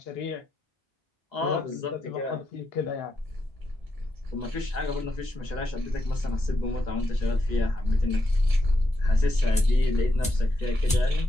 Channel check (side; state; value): both; normal; correlation 0.83